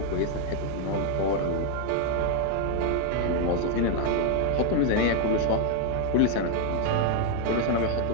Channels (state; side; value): different; both; correlation 0.00